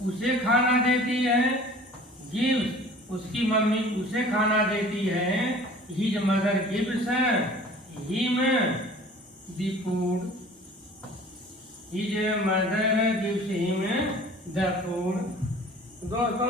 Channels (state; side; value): normal; both; correlation 0.46